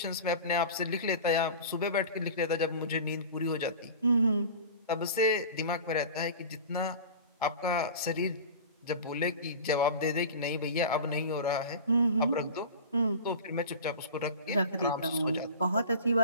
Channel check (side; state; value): both; inverted; correlation -0.35